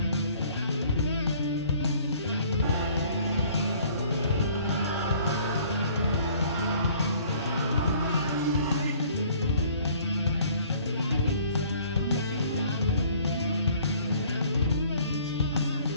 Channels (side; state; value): both; inverted; correlation -0.55